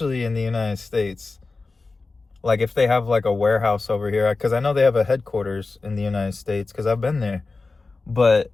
in the United States. Like, if they have like a warehouse over here, because I know they have a headquarters in the United States because I've been there. But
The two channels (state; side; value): quieter; right; 3.8 dB